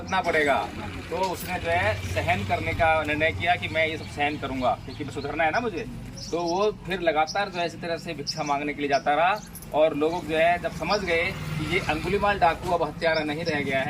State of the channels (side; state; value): both; identical; correlation 1.00